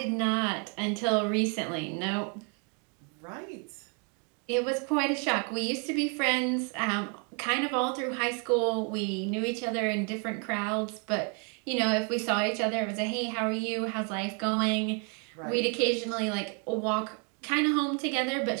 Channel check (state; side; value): quieter; left; 37.1 dB